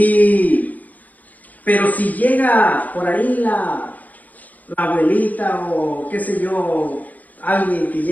Pero si llega por ahí la abuelita o qué sé yo, alguien que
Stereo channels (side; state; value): right; late; 0.080 ms